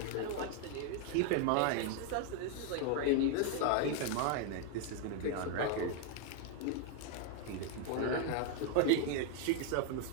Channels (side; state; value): both; different; correlation 0.01